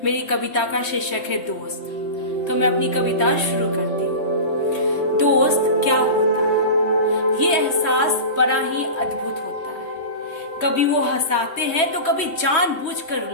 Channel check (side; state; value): right; late; 3.1 ms